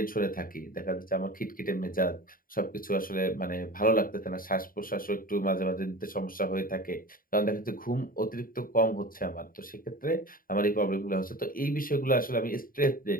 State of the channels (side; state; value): right; late; 0.41 ms